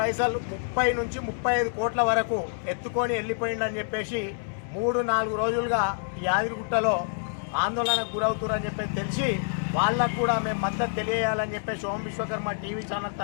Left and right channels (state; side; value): silent; right; digital silence